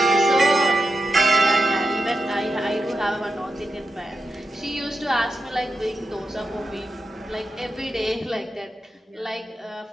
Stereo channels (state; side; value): normal; both; correlation 0.87